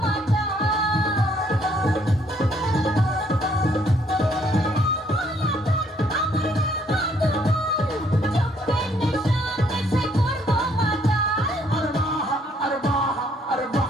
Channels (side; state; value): both; normal; correlation 0.67